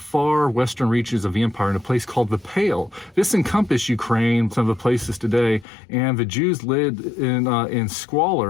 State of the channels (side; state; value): right; drops out; at 5.7 s